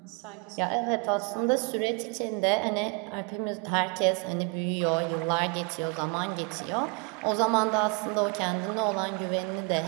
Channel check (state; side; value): quieter; left; 30.7 dB